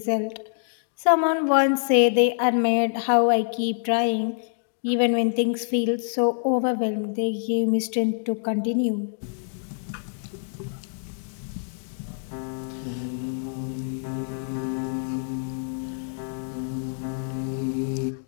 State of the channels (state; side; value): silent; right; digital silence